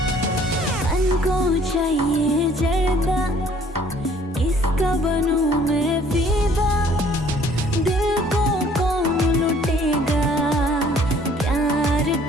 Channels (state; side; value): normal; both; correlation 0.58